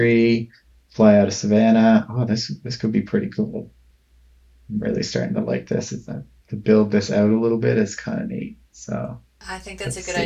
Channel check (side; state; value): both; identical; correlation 1.00